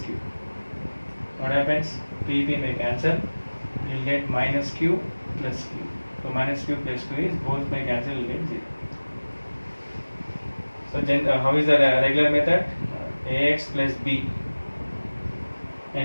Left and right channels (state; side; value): inverted; both; correlation -1.00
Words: What happens? P may cancel. You will get minus q plus q. So minus q plus q is both may cancel. You will get 0. So how is the regular method? Ax plus b,